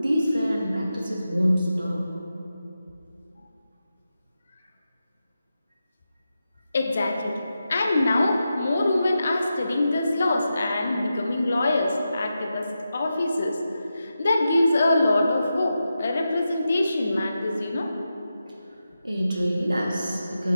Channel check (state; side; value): inverted; both; correlation -0.90